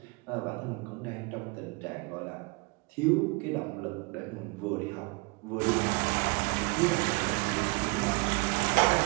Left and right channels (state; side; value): quieter; left; 26.5 dB